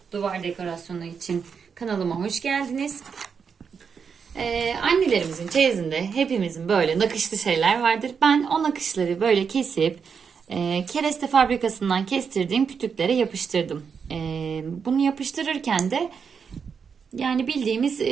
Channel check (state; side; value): quieter; left; 6.3 dB